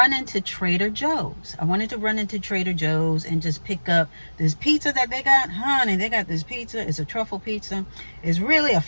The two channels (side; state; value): both; inverted; correlation -1.00